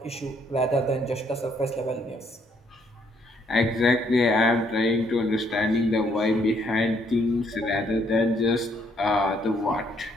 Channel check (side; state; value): both; normal; correlation 0.69